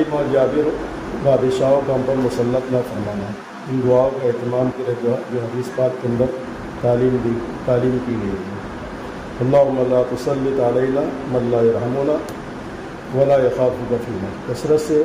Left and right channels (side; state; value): both; identical; correlation 1.00